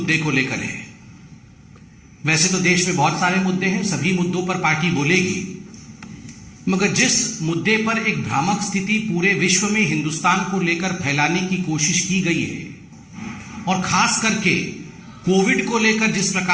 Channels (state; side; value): identical; both; correlation 1.00